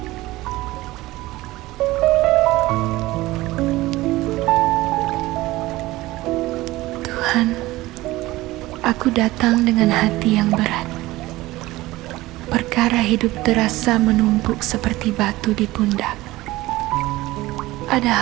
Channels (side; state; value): left; quieter; 18.4 dB